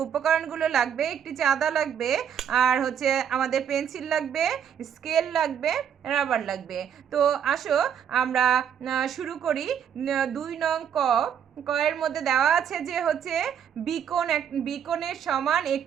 উপকরণগুলো লাগবে, একটি চাঁদা লাগবে, আর হচ্ছে আমাদের পেন্সিল লাগবে, স্কেল লাগবে, রাবার লাগবে। তো আসো আমরা শুরু করি। 2 নং কয়ের মধ্যে দেওয়া আছে যে হচ্ছে বিকোণের সমান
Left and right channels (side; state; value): left; quieter; 8.5 dB